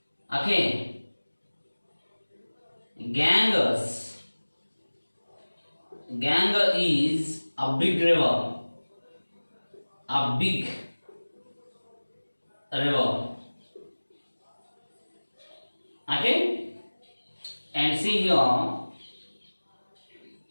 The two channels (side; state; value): both; inverted; correlation -1.00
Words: Okay, Ganges. Ganges is a big river. A big river. Okay? And see here,